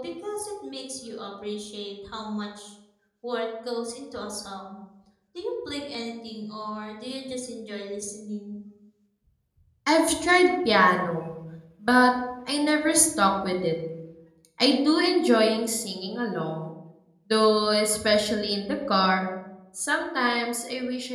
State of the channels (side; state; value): both; identical; correlation 1.00